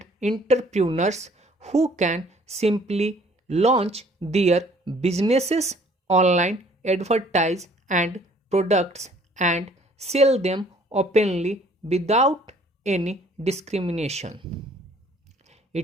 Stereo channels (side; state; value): both; normal; correlation 0.57